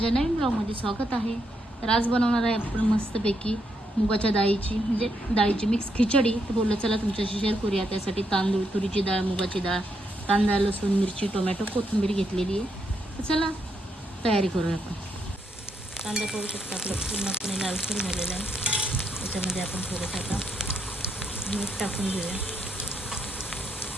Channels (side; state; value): both; normal; correlation 0.78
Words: नवीन ब्लॉगमध्ये स्वागत आहे. तर आज बनवणार आहे आपण मस्तपैकी मुगाच्या डाळीची मिक्स खिचडी. तर बोललं चला तुमच्याशी शेअर करूया. त्यासाठी तांदूळ, तुरीची डाळ, मुगाची डाळ, कांदा, लसूण, मिरची, टोमॅटो, कोथिंबीर घेतलेली आहे. तर चला तयारी करूया आपण. कांदा पाहू शकता आपलं पूर्णपणे लालसर झालेला आहे. त्याच्यामध्ये आपण थोडंसं आता मीठ टाकून घेऊया.